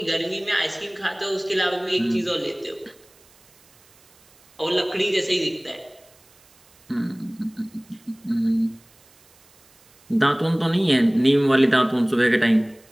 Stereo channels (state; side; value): noise; right; hiss, 30 dB below the sound